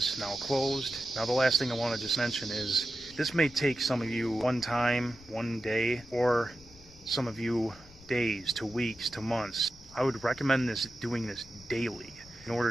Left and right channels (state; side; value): noise; left; rumble, 22 dB below the sound